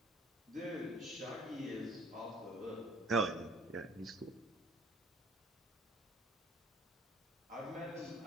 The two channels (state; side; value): normal; both; correlation 0.53